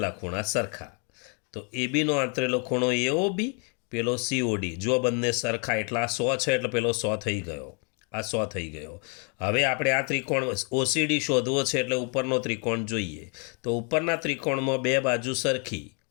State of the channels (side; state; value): right; quieter; 36.5 dB